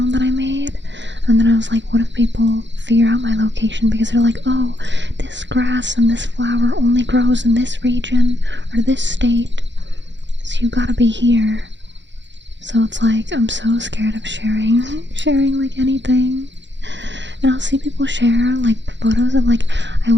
that I made, and then I was like, what if people figure out my location because they're like, oh, this grass and this flower only grows in this region or this state, so you gotta be here. So it's like, I'm so scared of sharing like anything. And I'll see people share like photos of like, I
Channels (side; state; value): left; late; 0.53 ms